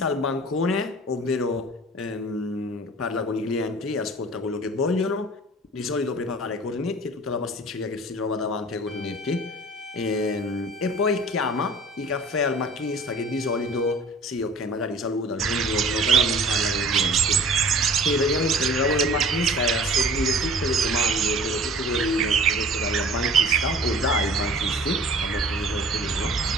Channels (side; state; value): both; normal; correlation 0.45